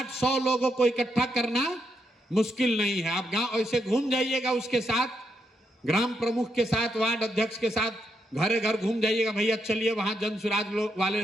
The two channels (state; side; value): normal; both; correlation 0.80